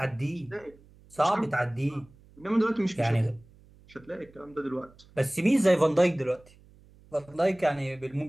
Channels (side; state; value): right; noise; hum, 26 dB below the sound